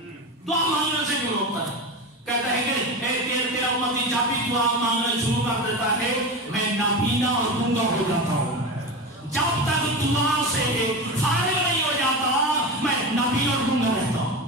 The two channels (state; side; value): normal; both; correlation 0.23